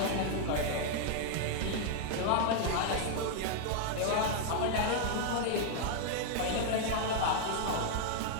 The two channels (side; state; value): both; different; correlation 0.00